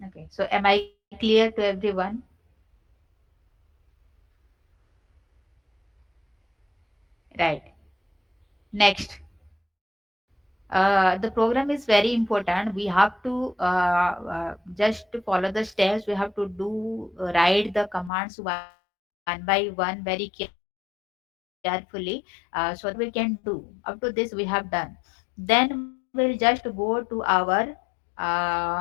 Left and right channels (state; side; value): drops out; right; at 18.1 s